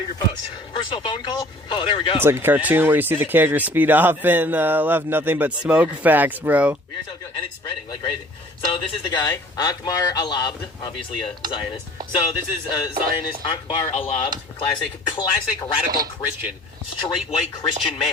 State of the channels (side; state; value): both; normal; correlation 0.51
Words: your post. Personal phone call? Oh, there we go. It's like a cartoon where you see the character speed off and left nothing but smoke. Facts, bro. We are so good, and it's spreading like crazy. So this is the guy, Akbar Alabd, obviously a Zionist. So this is Zionist Akbar Alabd, classic radical Christian, straight white Christian